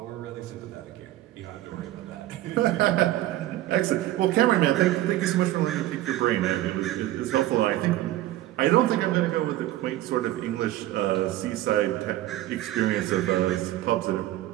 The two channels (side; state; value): left; quieter; 14.9 dB